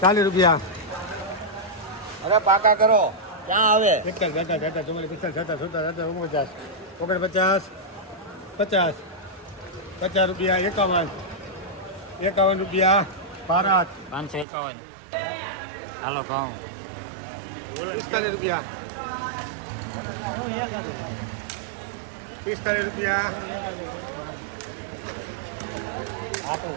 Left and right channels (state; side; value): drops out; left; at 14.5 s